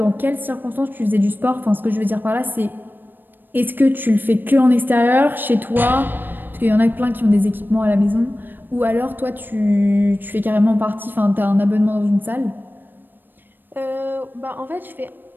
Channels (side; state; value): left; late; 0.093 ms